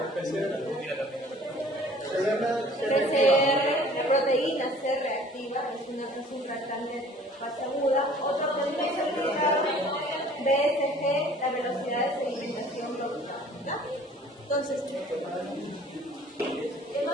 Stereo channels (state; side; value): normal; both; correlation 0.51